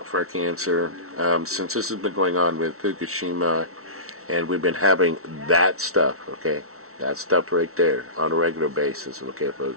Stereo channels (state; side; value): late; left; 0.63 ms